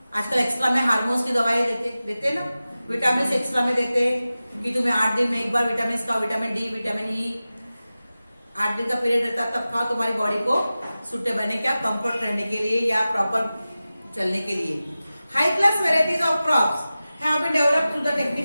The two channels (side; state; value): both; inverted; correlation -0.96